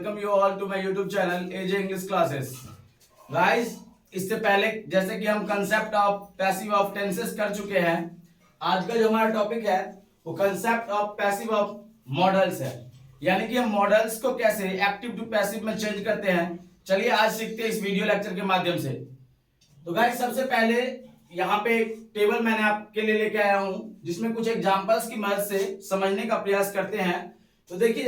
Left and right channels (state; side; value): identical; both; correlation 1.00